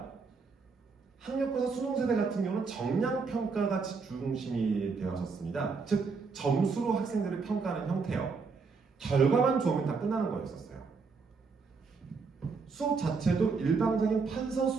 학력고사 수능 세대 같은 경우는 정량 평가가 중심이 되었었습니다. 즉 점수로 학생들을 평가하는 형태요. 결과만 좋으면 다 끝나는 거였었어요. 수업 자체도 일방적인 판서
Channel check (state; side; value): quieter; left; 4.8 dB